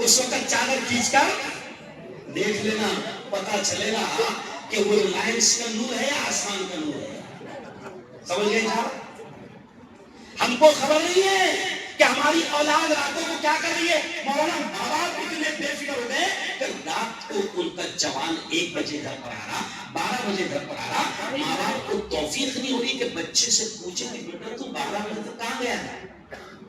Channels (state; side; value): identical; both; correlation 1.00